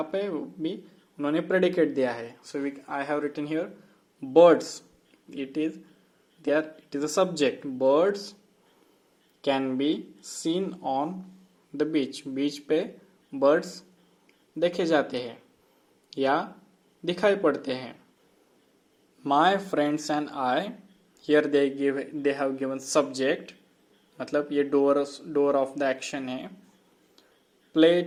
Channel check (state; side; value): identical; both; correlation 1.00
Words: पे भी उन्होंने प्रेडिकेट दिया है. So I have written here birds. It is a subject. Birds can be seen on the beach. Beach पे birds देखे जाते हैं या दिखाई पड़ते हैं. My friends and I, here they have given subject, मतलब ये door of the action है.